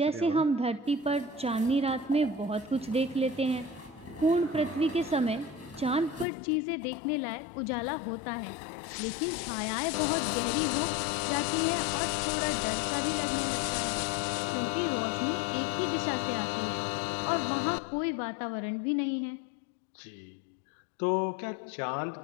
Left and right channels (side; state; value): right; drops out; at 6.2 s